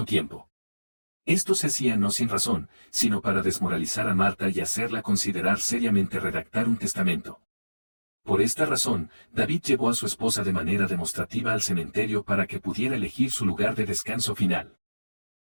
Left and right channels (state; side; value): inverted; both; correlation -1.00